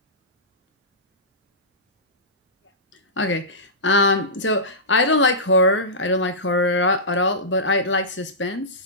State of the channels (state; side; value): normal; both; correlation -0.18